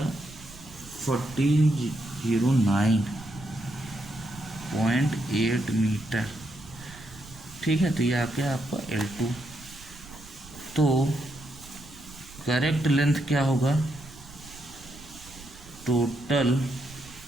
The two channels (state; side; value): noise; right; rumble, 19 dB below the sound